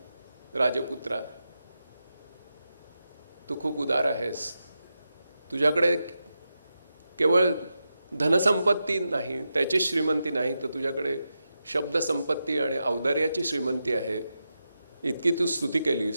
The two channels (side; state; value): both; inverted; correlation -0.88